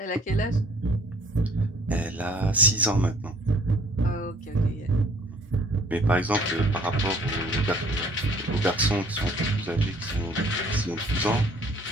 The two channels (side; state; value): both; normal; correlation 0.57